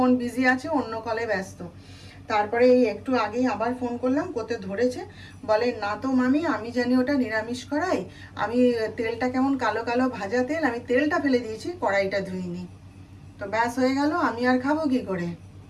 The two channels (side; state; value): both; identical; correlation 1.00